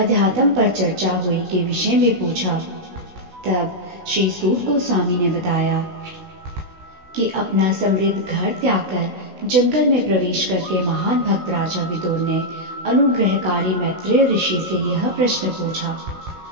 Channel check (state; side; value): late; left; 16 ms